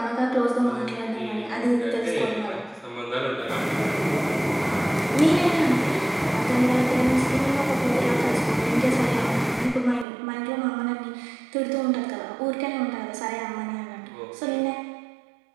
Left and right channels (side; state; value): left; drops out; at 10.1 s